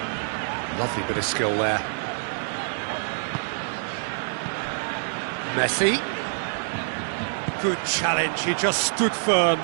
Lovely bit of skill there. Messi. Good challenge, he just stood firm.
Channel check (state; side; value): silent; left; digital silence